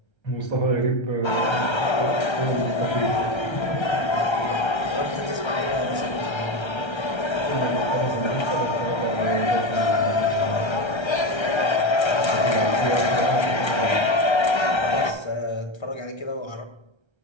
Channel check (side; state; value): right; late; 1.3 ms